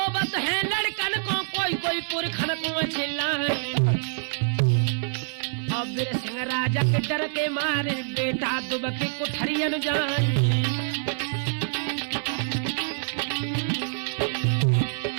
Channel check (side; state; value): left; silent; 61 dB below the other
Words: है लड़कन को कोई कोई पुरखन को चिल्ला। और बीर सिंह राजा के डर के मारे बेटा दुबके कुठरियन जाए।